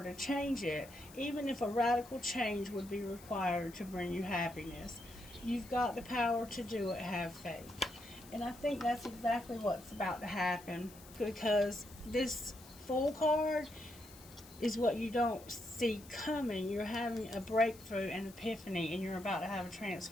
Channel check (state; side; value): noise; left; hiss, 20 dB below the sound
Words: to change it, even if a radical change would be required to bring you happiness. You've got the power to do it. Have faith. And I think that's exactly what's about to happen, because this Fool card is what you don't see coming. You're having a breakthrough and epiphany, and you're about to have a